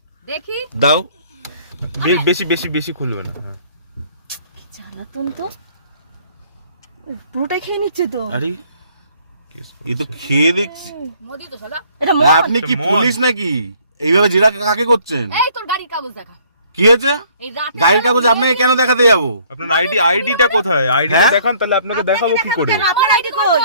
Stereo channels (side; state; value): both; inverted; correlation -0.60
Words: দেখি। দাও। বেশি বেশি বেশি খুলবে না। হ্যাঁ। কি জ্বালাতন তো। পুরোটাই খেয়ে নিচ্ছে তো। আরে কেস এ তো করছে। খেয়ে দেখছি। মদি তো সাদা। এটা মদ। আপনি কি মদ। পুলিশ নাকি? এইভাবে জেরা কাকে করছেন? এই তোর গাড়ির কাগজ দেখা। কি হয়েছে? এই রাতে গাড়ির কাগজ আপনাকে কেন দেখাতে যাবো? আপনার আইডিটা কোথায়? আইডিটা হ্যাঁ? দেখান, তাহলে আপনাকে দেখাবো কি করে? কেন? আপনার আইডি কই?